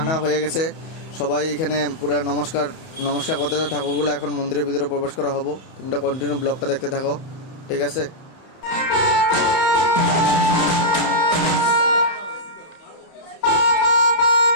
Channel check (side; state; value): right; late; 31 ms